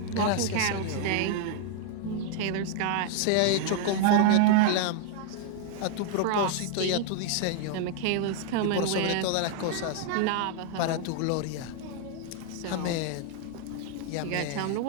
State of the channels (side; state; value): both; different; correlation 0.00